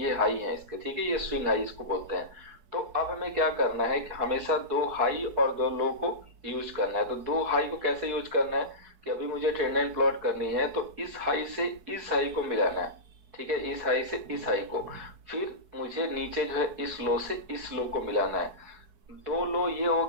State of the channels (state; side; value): late; left; 4.6 ms